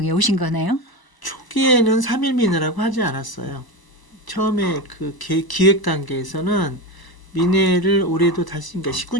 오신 거네요? 초기에는 3.1 민회라고 하지 않았어요. 처음에 그 기획 단계에서는 민회를 올해도 다시, 그러니까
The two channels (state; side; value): late; right; 1.0 ms